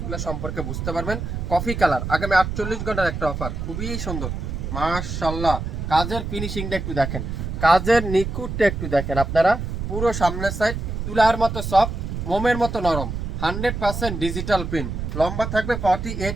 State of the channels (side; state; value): right; noise; rumble, 5 dB below the sound